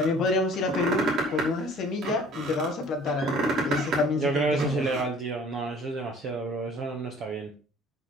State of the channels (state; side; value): normal; both; correlation 0.51